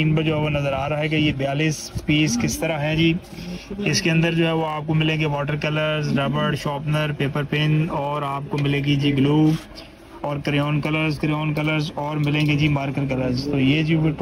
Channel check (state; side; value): identical; both; correlation 1.00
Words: पर जो है वो नज़र आ रहा है कि ये 42 पीस किस तरह है जी। इसके अंदर जो है वो आपको मिलेंगे वाटर कलर्स, रबड़, शार्पनर, पेपर पेन, और आपको मिलेगी जी ग्लू और क्रेयॉन कलर्स और मिलेंगे जी मार्कर कलर्स। तो ये जी वो